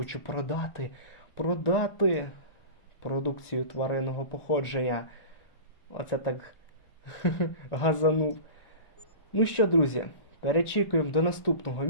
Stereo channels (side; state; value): right; late; 1.4 ms